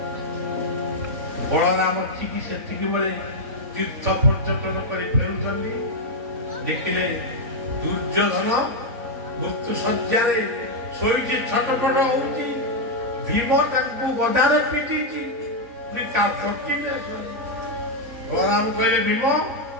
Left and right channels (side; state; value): left; late; 3.5 ms